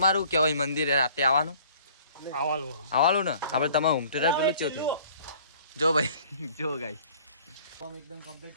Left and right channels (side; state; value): both; inverted; correlation -0.53